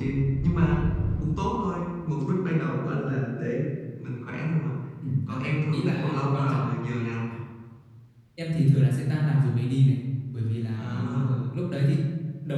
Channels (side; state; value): both; identical; correlation 1.00